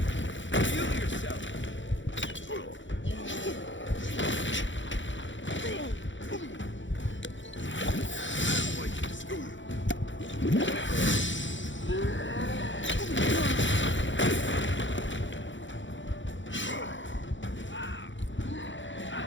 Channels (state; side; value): late; right; 0.55 ms